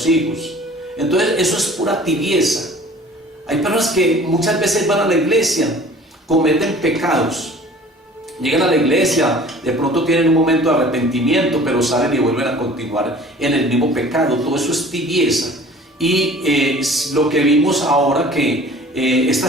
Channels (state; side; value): normal; both; correlation 0.47